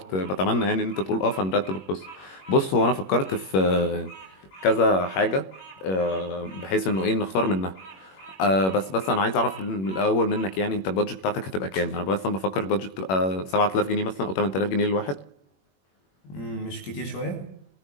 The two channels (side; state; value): right; late; 21 ms